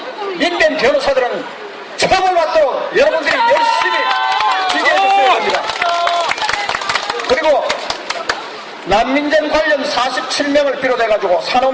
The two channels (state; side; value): identical; both; correlation 1.00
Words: 민변 변호사들은 처벌받도록 여러분들이 열심히 지지해주셔야 합니다. 그리고 난민전 관련 47명을 비롯해가지고